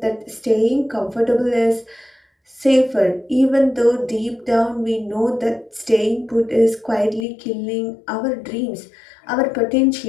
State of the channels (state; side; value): drops out; right; at 7.2 s